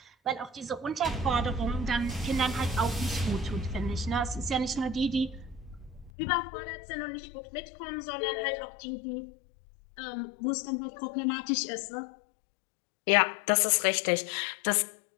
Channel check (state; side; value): drops out; right; at 6.1 s